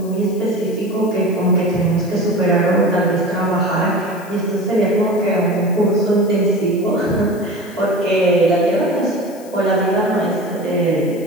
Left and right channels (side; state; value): left; noise; hiss, 22 dB below the sound